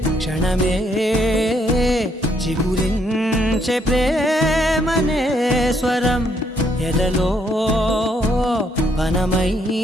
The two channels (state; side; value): normal; both; correlation 0.72